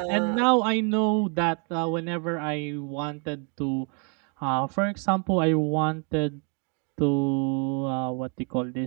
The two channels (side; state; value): left; quieter; 34.7 dB